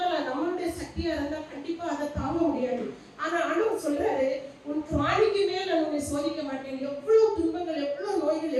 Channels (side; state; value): both; identical; correlation 1.00